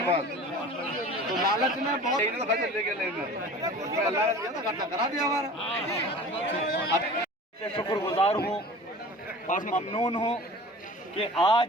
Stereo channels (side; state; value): both; normal; correlation 0.40